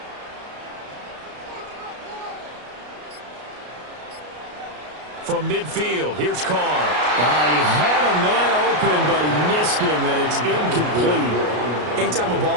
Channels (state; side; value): late; left; 33 ms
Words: From midfield, here's Carr. He had a man open, but he missed him, and it's incomplete. Anytime a